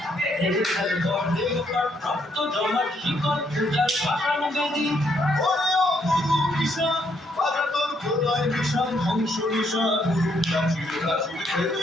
ভেঙে ফেলে বর্ণে গোপাট রক্ত জমাট শিকল পূজার পাষাণ বেদী ওরে ও তরু নিশান বাজা তোর প্রলয় নিশান ধ্বংস নিশান প্রাচীর প্রাচীর বেদী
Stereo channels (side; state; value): both; normal; correlation 0.73